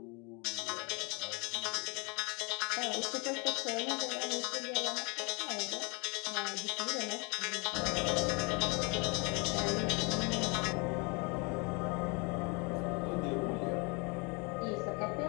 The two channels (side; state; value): right; quieter; 30.9 dB